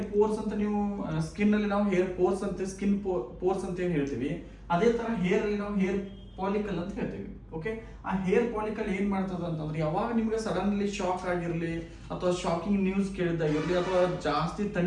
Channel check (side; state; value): both; identical; correlation 1.00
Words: ಪೋರ್ಸ್ ಅಂತ ನೀವು ಸ್ಕಿನ್ ಅಲ್ಲಿ ನಾವು ಹೇರ್ ಪೋರ್ಸ್ ಅಂತ ಸ್ಕಿನ್ ಪೋರ್ಸ್ ಅಂತ ಏನ್ ಹೇಳ್ತೀವಿ, ಅದೇ ತರ ಹೇರ್ ಅಲ್ಲಿ ನಾವು ಹೇರ್ ಪಾಲಿಕಲ್ ಅಂತ ಹೇಳ್ತೀವಿ. ಓಕೆ, ಆ ಹೇರ್ ಪಾಲಿಕಲ್ ಏನ್ ಮಾಡ್ತದ ಅಂತಂದ್ರೆ ಯಾವಾಗ ನಿಮ್ಗೆ ಸಡನ್ಲಿ ಶಾಕ್ ಆಗಿರ್ಲಿ ಅಥವಾ ಶಾಕಿಂಗ್ ನ್ಯೂಸ್ ಕೇಳಿದಾಗಿರ್ಲಿ ಅಥವಾ ಜಾಸ್ತಿ